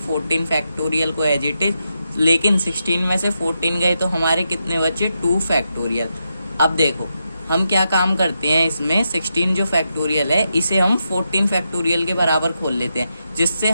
फैक्टोरियल को एज इट इज, लेकिन 16 में से 14 गए तो हमारे कितने बचे, 2 फैक्टोरियल। अब देखो हम क्या काम करते हैं इसमें, 16 जो फैक्टोरियल है इसे हम 14 फैक्टोरियल के बराबर खोल लेते हैं, जिससे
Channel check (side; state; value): both; inverted; correlation -0.85